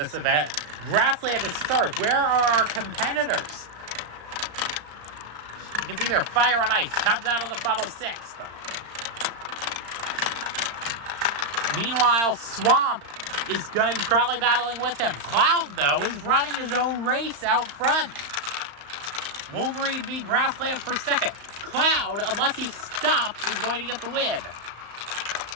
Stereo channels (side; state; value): left; late; 35 ms